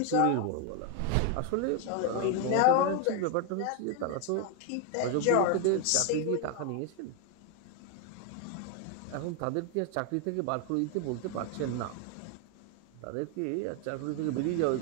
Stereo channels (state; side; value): different; both; correlation 0.01